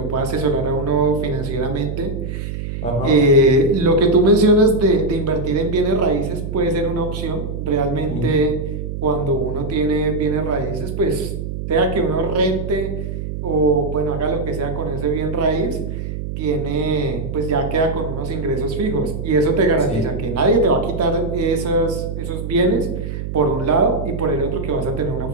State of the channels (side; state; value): right; noise; hum, 6 dB below the sound